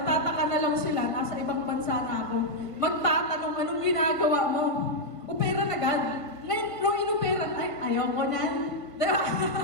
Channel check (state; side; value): late; right; 1.5 ms